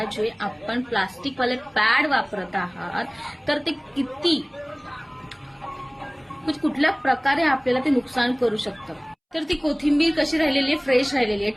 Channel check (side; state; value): both; identical; correlation 1.00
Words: जे आपण प्लास्टिकवाले पॅड वापरत आहात तर ते किती कुठल्या प्रकारे आपल्याला ते नुकसान करू शकतं. तर ती कोथिंबीर कशी राहिलेली आहे? फ्रेश राहिलेली आहे,